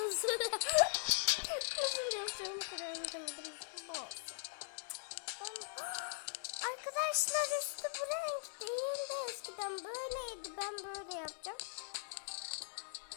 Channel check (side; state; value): right; silent; 51 dB below the other